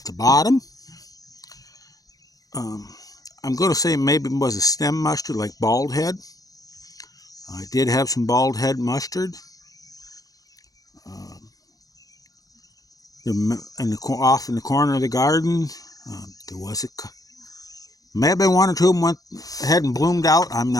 the bottom, I'm going to say maybe it was a stem mustard, like bald head. I did have some bald head mustard. Off in the corner of the garden, there was may have been one or two of them went ahead and bloomed out. I'm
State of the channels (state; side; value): late; right; 0.18 ms